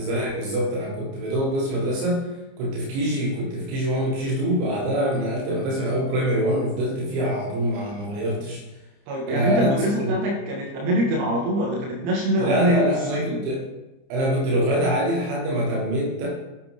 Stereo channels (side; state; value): left; late; 30 ms